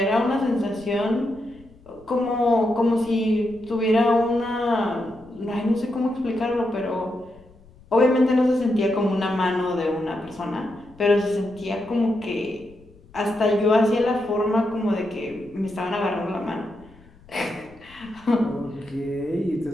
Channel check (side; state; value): left; noise; rumble, 25 dB below the sound